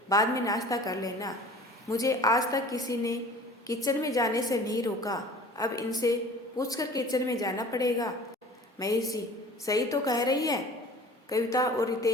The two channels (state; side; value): normal; both; correlation 0.44